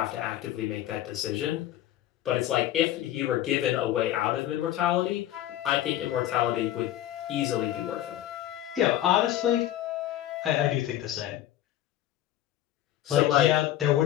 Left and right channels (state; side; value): quieter; right; 13.2 dB